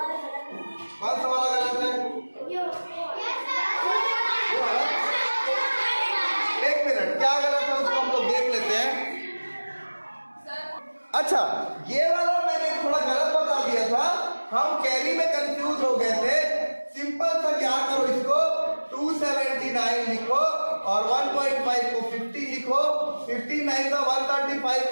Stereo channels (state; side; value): inverted; both; correlation -1.00